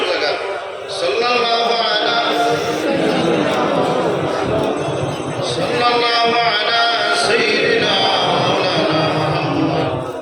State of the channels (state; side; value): identical; both; correlation 1.00